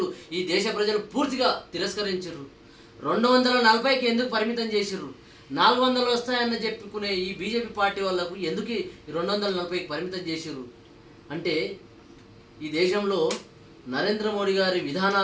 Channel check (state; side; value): identical; both; correlation 1.00